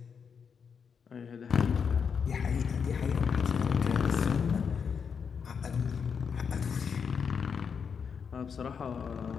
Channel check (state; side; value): quieter; right; 6.4 dB